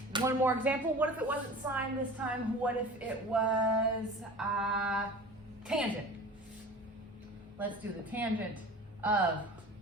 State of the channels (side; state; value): both; normal; correlation 0.38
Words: One more example. What if it wasn't sine this time? What if it was tangent? Let's do the tangent of,